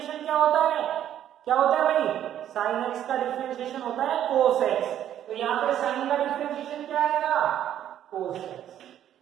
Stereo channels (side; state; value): left; quieter; 10.9 dB